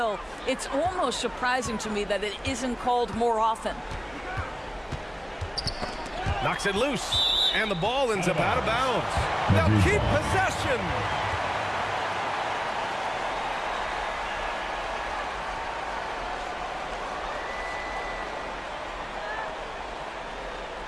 It's almost surprising to me that it isn't called more often. Knocks it loose, and the ball ends up out of bounds. They'll keep possession.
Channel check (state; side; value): identical; both; correlation 1.00